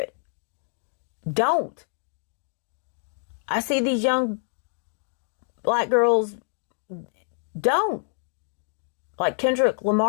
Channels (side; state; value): right; silent; digital silence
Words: Don't. I see these young black girls, don't. Like Kendrick